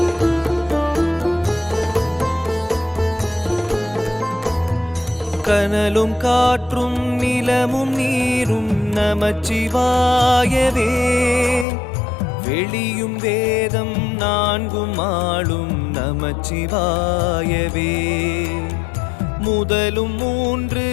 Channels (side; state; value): right; drops out; at 11.7 s